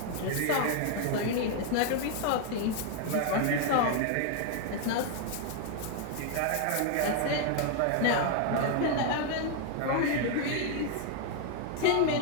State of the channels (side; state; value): both; different; correlation 0.00